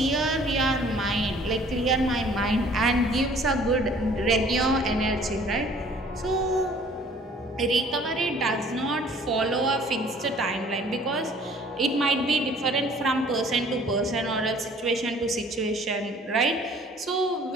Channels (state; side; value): normal; both; correlation 0.54